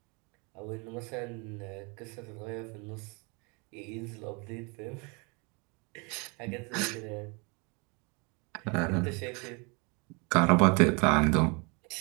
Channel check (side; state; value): left; quieter; 31.1 dB